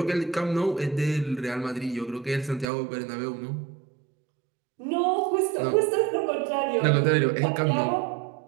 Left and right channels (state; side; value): drops out; left; at 2.7 s